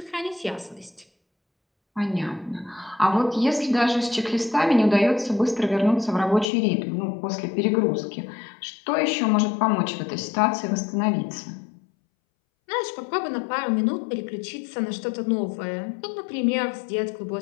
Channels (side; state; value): right; drops out; at 6.5 s